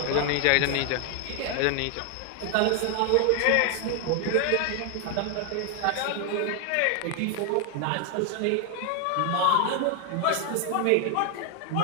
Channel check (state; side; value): different; both; correlation 0.01